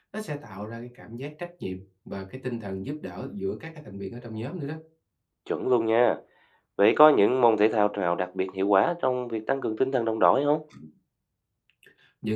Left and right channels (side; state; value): both; identical; correlation 1.00